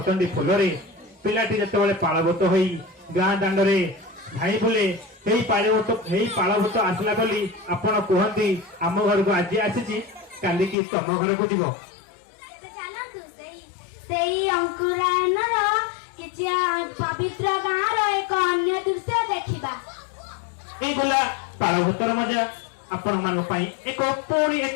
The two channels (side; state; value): right; drops out; at 10.8 s